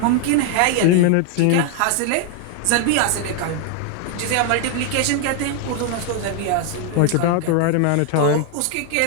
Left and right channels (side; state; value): both; different; correlation 0.00